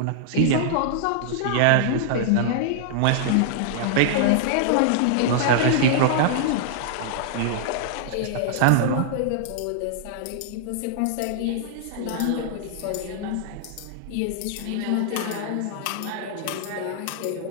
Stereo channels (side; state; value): both; different; correlation -0.01